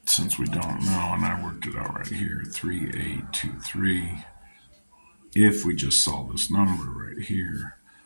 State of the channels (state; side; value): inverted; both; correlation -1.00